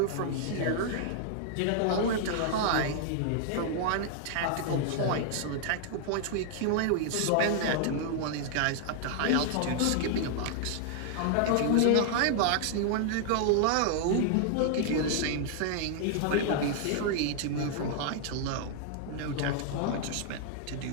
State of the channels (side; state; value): both; different; correlation 0.00